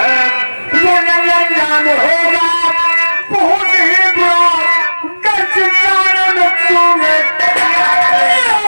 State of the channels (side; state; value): both; inverted; correlation -1.00